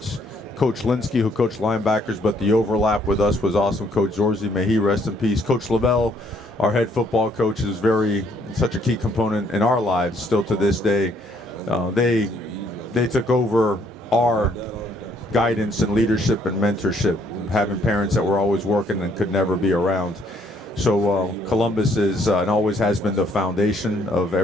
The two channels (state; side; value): normal; both; correlation 0.66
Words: Coach Linsky, who coached linebackers, but the overlap with us was awesome. Coach Zorzi, may he rest in peace. Coach Lavelle, our head football coach, is such a key component in our lives still to this day. They took over our guidance and leadership and mentorship, having parents that were always working and could never be around. So Columbus is and always has been the foundation of